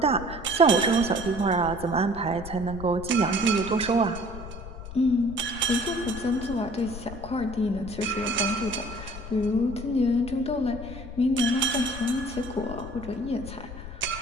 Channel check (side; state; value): left; noise; rumble, 12 dB below the sound